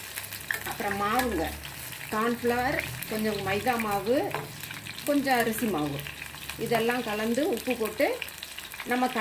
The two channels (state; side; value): identical; both; correlation 1.00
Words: அப்புறம் மாவுங்க, கார்ன்ஃப்ளவர், கொஞ்சம் மைதா மாவு, கொஞ்சம் அரிசி மாவு, இதெல்லாம் கலந்து உப்பு போட்டு நம்ம